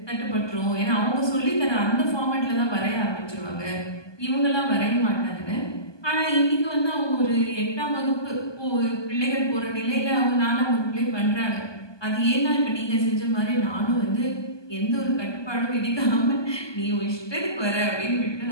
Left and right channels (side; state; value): right; late; 1.2 ms